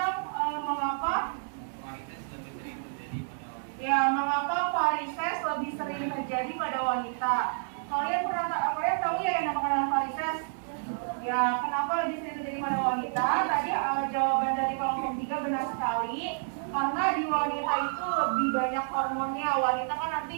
mengapa varises lebih sering terjadi pada wanita. Kalian tahu ya yang namanya varises? Ya, kenapa lebih sering terjadi pada wanita? Tadi jawaban dari kelompok 3 benar sekali. Karena di wanita itu lebih banyak hormonnya. Wanita kan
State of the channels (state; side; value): silent; left; 58 dB below the other